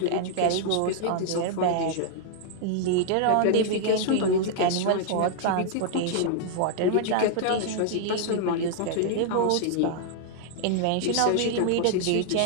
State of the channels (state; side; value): different; both; correlation 0.00